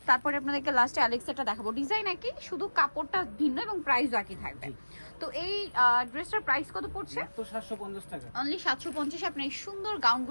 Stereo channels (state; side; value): inverted; both; correlation -1.00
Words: তারপরে আপনাদেরকে লাস্টে অ্যালেক্সেরটা দেখাবো। ডিজাইন একই, শুধু কাপড়টা ভিন্ন এবং প্রাইসও একই থাকবে। তো এই ড্রেসটার প্রাইস কত পড়ছে? মাত্র 750 টাকা। অনলি 750 আপনি এই সুন্দর